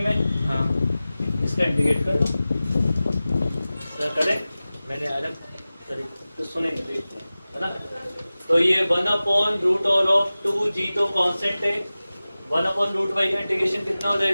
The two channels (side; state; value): both; inverted; correlation -0.96